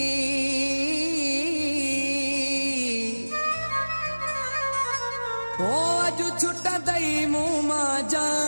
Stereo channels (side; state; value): both; inverted; correlation -1.00